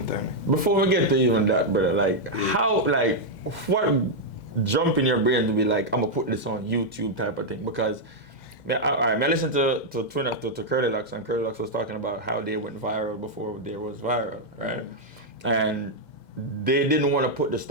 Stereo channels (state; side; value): late; right; 2.1 ms